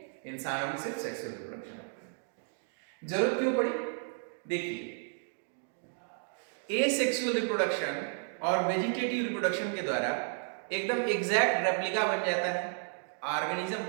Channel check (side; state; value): left; silent; 56 dB below the other